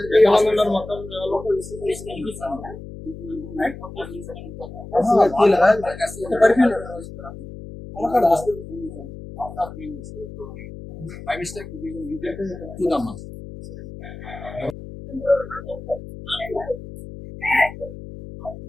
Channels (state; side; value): noise; left; hum, 13 dB below the sound